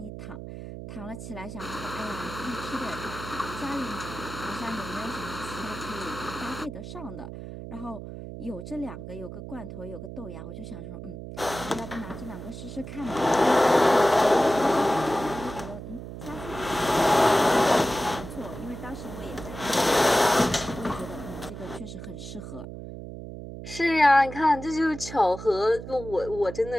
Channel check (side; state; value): right; noise; hum, 10 dB below the sound